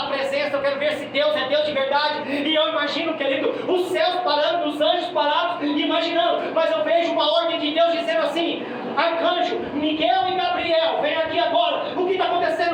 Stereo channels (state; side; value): identical; both; correlation 1.00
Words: a presença, eu quero ver se Deus é Deus de verdade. E eu imagino, querido, os céus parando, os anjos parados, imaginando. Mas eu vejo uma ordem de Deus dizendo assim: arcanjo, Miguel e Gabriel, vem aqui agora. O que está